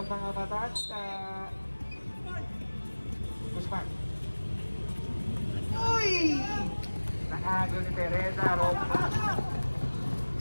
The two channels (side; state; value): both; inverted; correlation -1.00